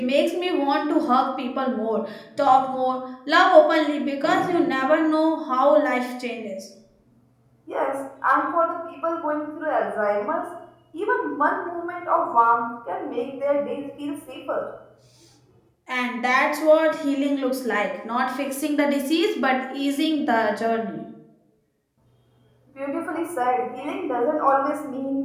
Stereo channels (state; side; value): identical; both; correlation 1.00